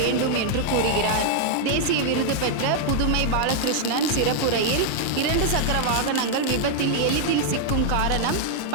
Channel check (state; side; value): different; both; correlation -0.01